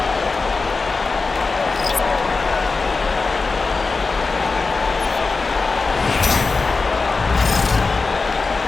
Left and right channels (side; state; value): right; quieter; 4.1 dB